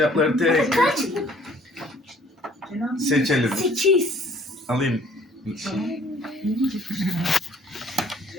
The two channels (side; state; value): both; normal; correlation 0.58